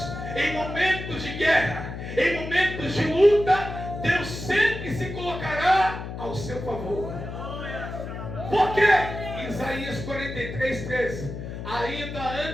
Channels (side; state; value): left; noise; hum, 8 dB below the sound